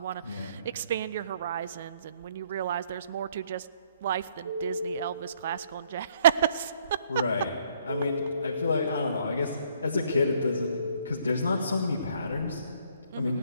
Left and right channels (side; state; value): both; inverted; correlation -0.65